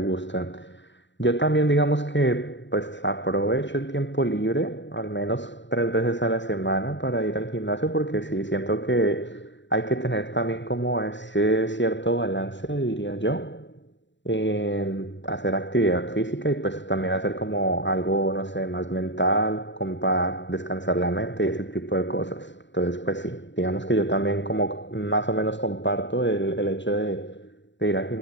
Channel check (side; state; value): right; late; 0.53 ms